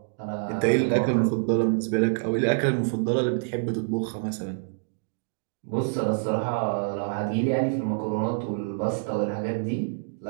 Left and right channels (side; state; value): left; silent; digital silence